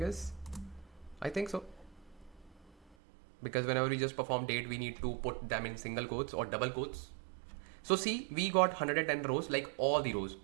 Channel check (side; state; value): left; drops out; at 3.0 s